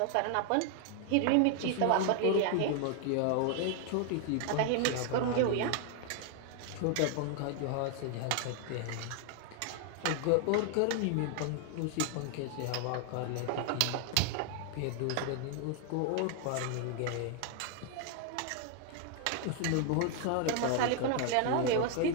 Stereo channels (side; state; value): both; different; correlation 0.00